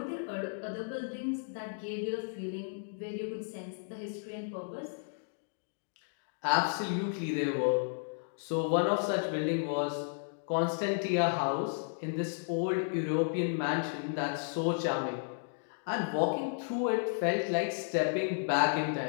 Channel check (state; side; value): silent; right; digital silence